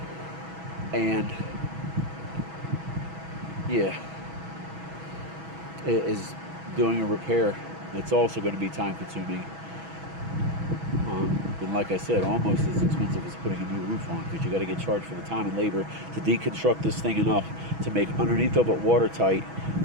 And yeah, it is doing a repair. It's also going to be time consuming. And like I said, almost as expensive as putting a new roof on, because you got to get charged for the time and labor to deconstruct this thing enough to make underneath of it watertight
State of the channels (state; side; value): late; left; 6.2 ms